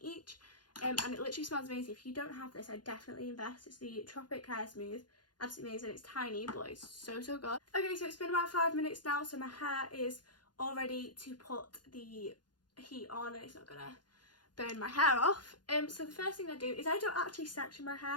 each, and it literally smells amazing. If you don't have this, I definitely invest. It's the Tropic Hair Smooth, absolutely amazing. It's tiny, but it's so good. Okay, so it's been about 5 minutes now, so my hair is all ready to put the heat on, and it's not gonna burn my hair off. So the first thing I do is I don't actually section my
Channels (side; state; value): right; late; 0.70 ms